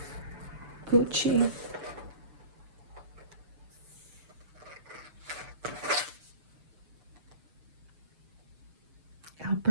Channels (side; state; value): left; late; 6.8 ms